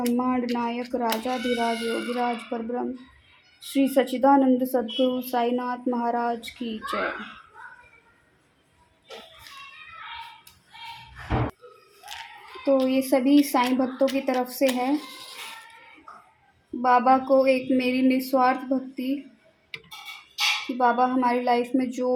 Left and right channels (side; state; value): both; identical; correlation 1.00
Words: नायक राजाधिराज योगिराज परब्रह्म श्री सच्चिदानंद सद्गुरु साईनाथ महाराज की जय। तो ये सभी साईं भक्तों की तरफ से है। बाबा को एक मेरी निस्वार्थ भक्ति कि बाबा हमारी लाइफ में जो